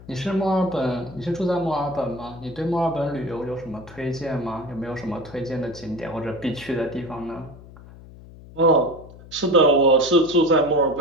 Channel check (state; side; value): noise; left; hum, 19 dB below the sound